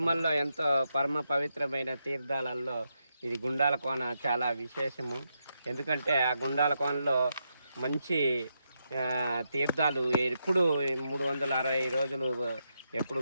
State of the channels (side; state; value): both; inverted; correlation -0.83